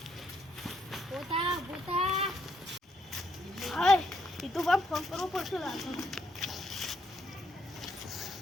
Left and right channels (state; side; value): normal; both; correlation 0.74